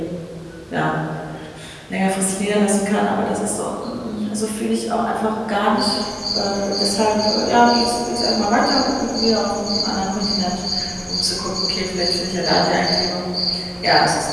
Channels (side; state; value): both; identical; correlation 1.00